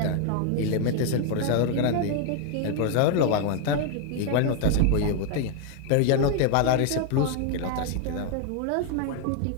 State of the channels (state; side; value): different; both; correlation 0.00